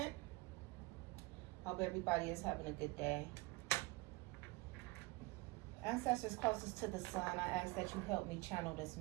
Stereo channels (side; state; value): left; quieter; 23.2 dB